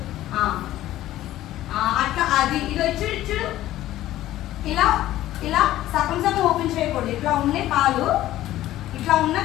అట్లా అది ఇదో ఇచ్చుడు ఇలా ఇలా సగం సగం ఓపెన్ చేయకూడదు. ఇట్లా ఉన్న కాలు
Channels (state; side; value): quieter; right; 14.3 dB